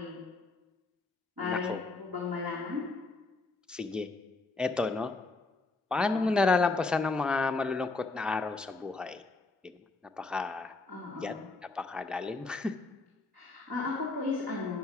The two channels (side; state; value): right; quieter; 3.6 dB